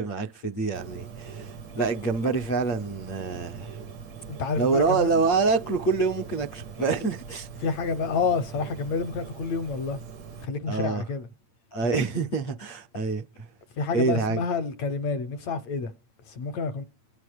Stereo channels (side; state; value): right; late; 8.7 ms